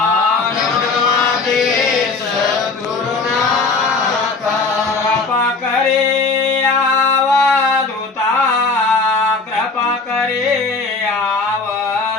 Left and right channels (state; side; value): quieter; right; 4.1 dB